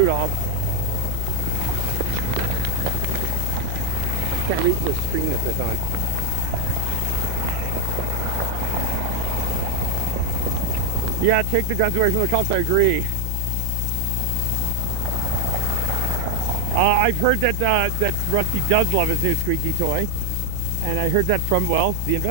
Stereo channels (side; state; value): both; different; correlation 0.01